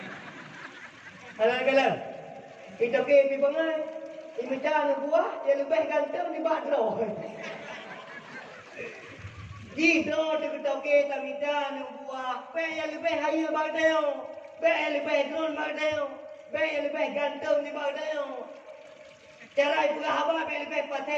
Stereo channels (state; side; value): identical; both; correlation 1.00